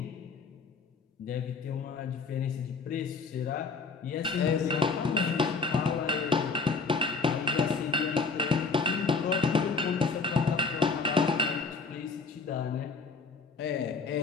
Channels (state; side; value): quieter; right; 4.5 dB